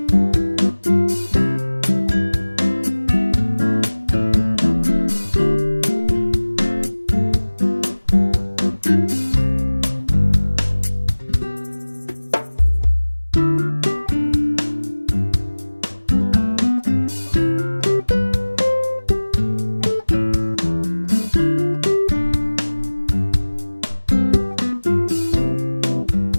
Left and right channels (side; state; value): both; inverted; correlation -1.00